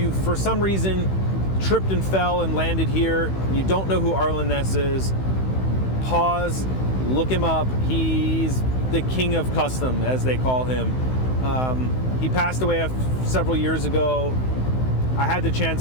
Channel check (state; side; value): late; right; 16 ms